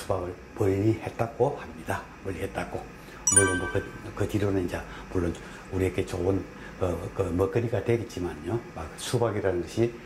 멀리했다고 합니다. 멀리했다고. 물론 뭐 그 뒤로는 이제 물론 우리에게 좋은 그 먹거리가 되겠지만요. 막 수박이라는 것이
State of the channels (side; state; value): both; identical; correlation 1.00